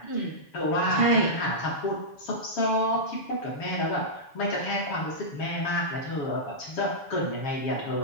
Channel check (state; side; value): late; right; 7.0 ms